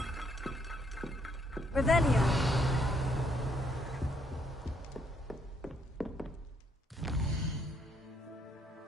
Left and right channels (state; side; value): normal; both; correlation 0.71